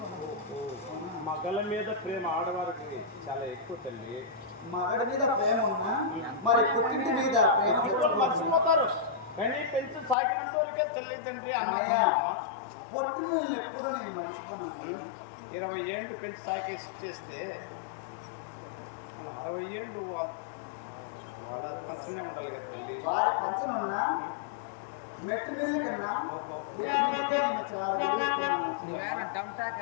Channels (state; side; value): drops out; right; at 10.2 s